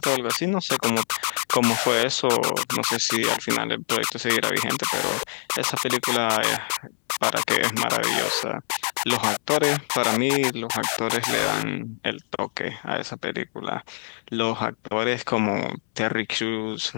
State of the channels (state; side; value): silent; right; 62 dB below the other